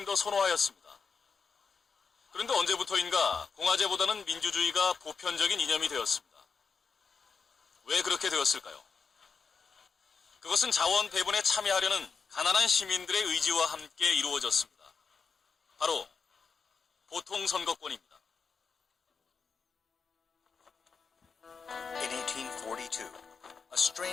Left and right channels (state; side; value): quieter; right; 5.5 dB